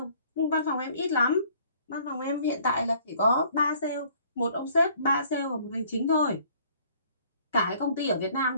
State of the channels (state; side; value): inverted; both; correlation -0.58